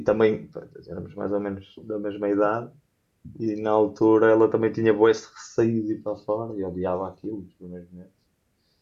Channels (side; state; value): both; identical; correlation 1.00